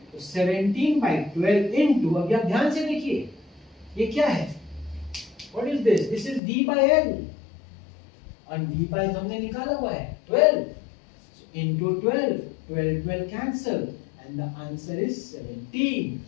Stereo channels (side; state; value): right; drops out; at 6.4 s